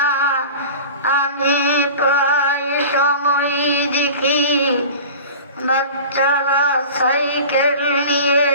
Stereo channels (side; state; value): both; inverted; correlation -0.37